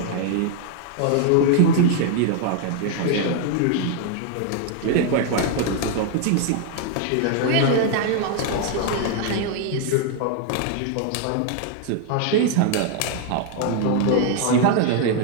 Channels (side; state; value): both; different; correlation 0.00